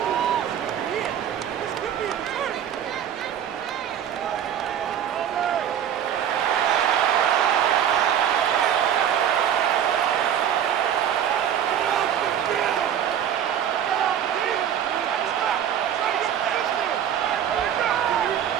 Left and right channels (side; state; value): left; quieter; 9.6 dB